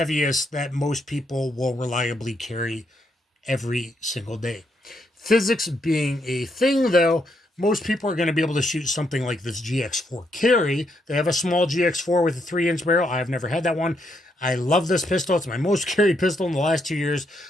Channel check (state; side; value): normal; both; correlation 0.77